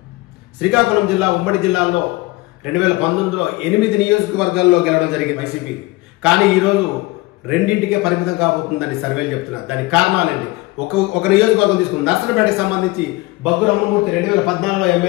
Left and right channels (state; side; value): quieter; right; 21.3 dB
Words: శ్రీకాకుళం జిల్లా ఉమ్మడి జిల్లాలో 2019లో 8 నియోజకవర్గాల్లో గెలవడం జరిగింది వైసీపీ. కానీ ఈరోజు రెండింటికే పరిమితం కాబోతుందని సర్వేలు చెప్తున్నారు. దానికి కారణాలేంటి? ఒక నియోజకవర్గం తీసుకుని నర్సనపేటకి సంబంధించి బగ్గు రమణమూర్తి 2014లో